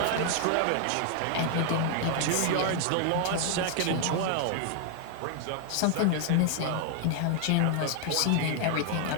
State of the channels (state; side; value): different; both; correlation 0.00